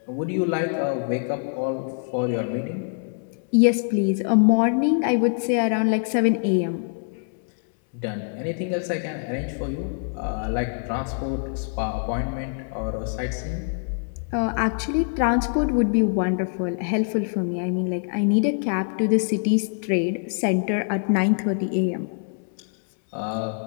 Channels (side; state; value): right; silent; 62 dB below the other